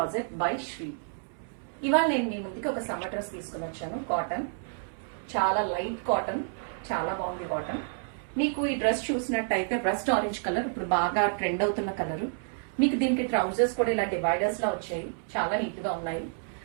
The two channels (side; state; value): left; silent; 58 dB below the other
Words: by Shree. ఇవాళ నేను మీ ముందుకి ఒక సమ్మర్ డ్రెస్ తీసుకుని వచ్చాను. కాటన్, చాలా లైట్ కాటన్, చాలా బాగుంది కాటన్. మీకు ఈ డ్రెస్ చూసినట్టయితే రస్ట్ ఆరెంజ్ కలర్ ఇప్పుడు బాగా ట్రెండ్ అవుతున్న కలర్. మీకు దీనికి ట్రౌజర్స్ కూడా ఇలా డివైడర్స్ లా వచ్చాయి, చాలా నీట్ గా ఉన్నాయి.